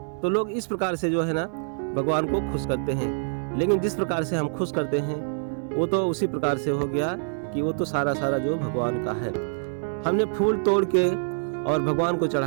तो लोग इस प्रकार से जो है ना भगवान को खुश करते हैं। लेकिन जिस प्रकार से हम खुश करते हैं वो तो उसी प्रकार से हो गया कि वो तो सारा जो भगवान का है। हमने फूल तोड़ के और भगवान को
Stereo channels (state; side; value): silent; left; 61 dB below the other